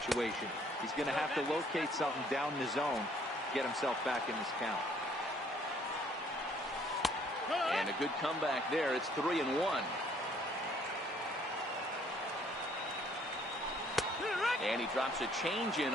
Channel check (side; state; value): both; normal; correlation 0.62